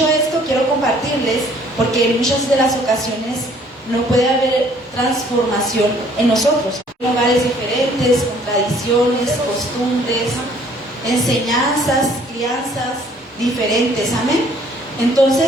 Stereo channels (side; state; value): both; normal; correlation 0.59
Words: esto, quiero compartirles, porque en muchas de las ocasiones no puede haber transformación en nosotros. lugares diferentes, con tradiciones, costumbres, enseñanzas, crianzas diferentes, amén.